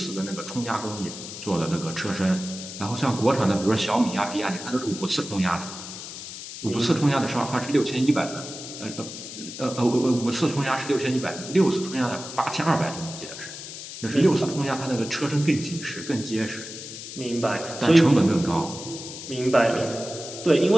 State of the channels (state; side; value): noise; left; hiss, 11 dB below the sound